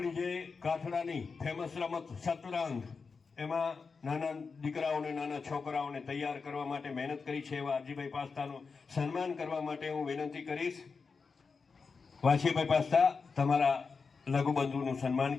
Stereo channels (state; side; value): quieter; right; 4.9 dB